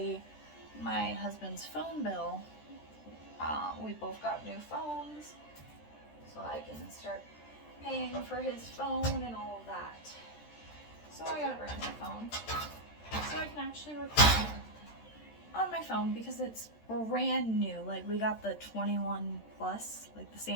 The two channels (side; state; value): right; late; 13 ms